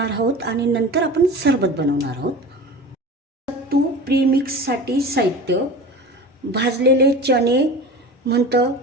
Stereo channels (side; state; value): both; normal; correlation 0.34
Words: आहोत आणि नंतर आपण सरबत बनवणार आहोत. सत्तू प्रीमिक्ससाठी साहित्य: भाजलेले चणे म्हणतं,